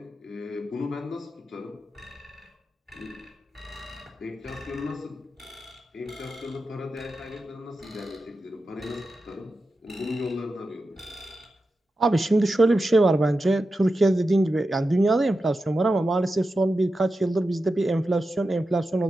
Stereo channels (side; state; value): both; normal; correlation 0.91